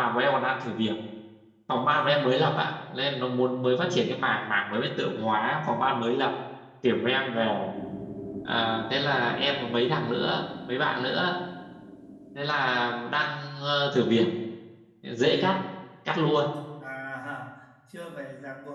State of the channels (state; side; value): identical; both; correlation 1.00